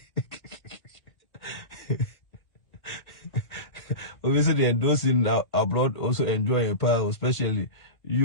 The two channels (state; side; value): late; right; 2.1 ms